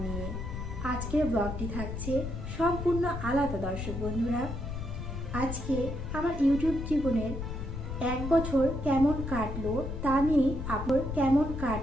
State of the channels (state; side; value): noise; left; rumble, 5 dB below the sound